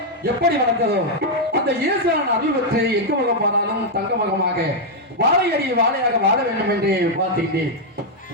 எப்படி வளர்ந்ததோ அந்த ஈஸ்வரன் அருள் பெற்று எங்க முகம் போனாலும் தங்க முகமாக வாழையடி வாழையாக வாழ வேண்டும் என்று பார்த்துக்கிட்டேன்.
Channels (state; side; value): normal; both; correlation -0.02